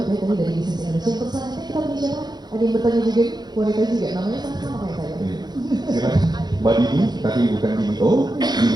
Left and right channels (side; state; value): left; late; 0.20 ms